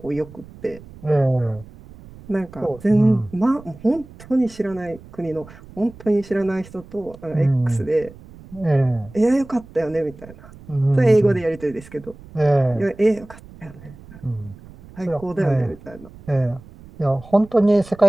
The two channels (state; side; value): noise; right; rumble, 20 dB below the sound